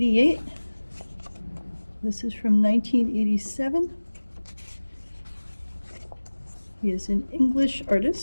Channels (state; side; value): inverted; both; correlation -1.00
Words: This is from 1987. He is an English